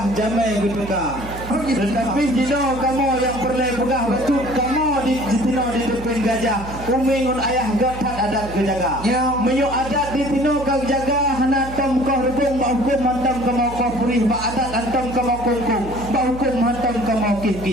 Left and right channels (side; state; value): right; noise; hum, 12 dB below the sound